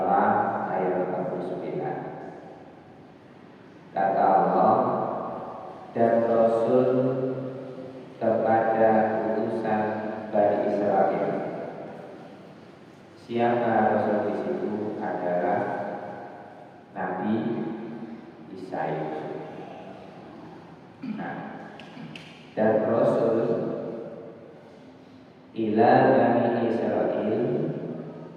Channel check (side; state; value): both; identical; correlation 1.00